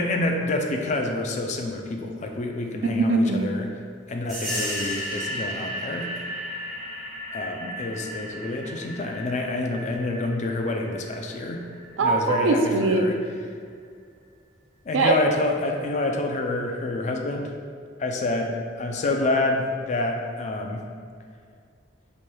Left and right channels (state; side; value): normal; both; correlation 0.23